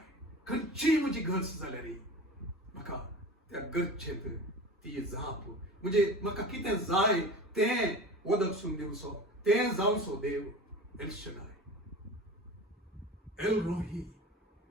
खंयची म्हजी गरज जाल्या रे म्हाका त्या गरजेंत ती जाप म्हणजे म्हाका कितें जाय तें वदकसून दिवचो तें जावचो देव एल शडाय एल रोही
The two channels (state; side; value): normal; both; correlation 0.34